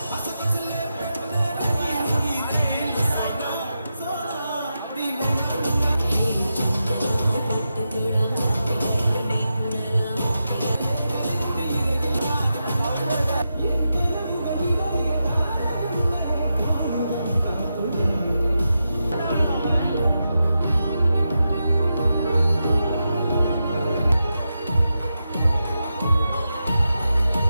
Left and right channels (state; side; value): inverted; both; correlation -0.88